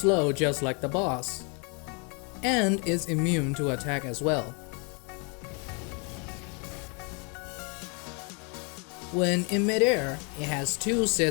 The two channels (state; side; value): quieter; right; 35.0 dB